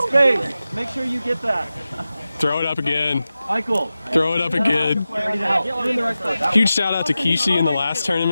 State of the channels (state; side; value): inverted; both; correlation -0.94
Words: space. Make sure you get that. Throw it up again. Michael. Throw it up again. Ready to help. You're in the right spot. Huge shout out to Kishi in the last